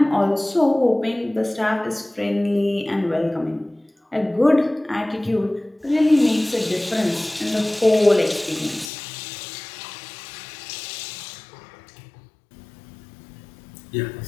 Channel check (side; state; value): right; drops out; at 8.9 s